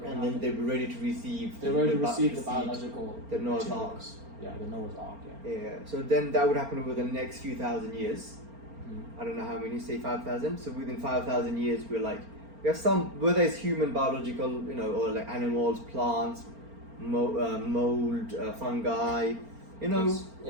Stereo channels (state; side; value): late; left; 4.4 ms